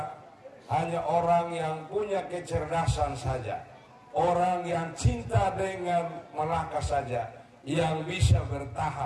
hanya orang yang punya kecerdasan saja, orang yang cinta dengan Melaka saja yang bisa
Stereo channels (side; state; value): both; identical; correlation 1.00